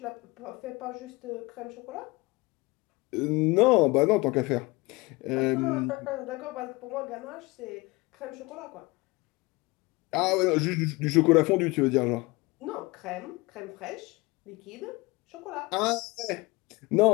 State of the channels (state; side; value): quieter; right; 23.9 dB